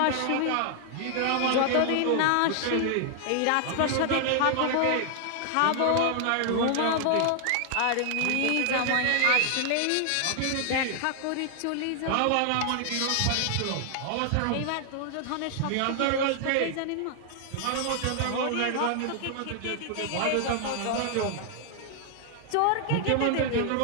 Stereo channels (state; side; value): different; both; correlation 0.00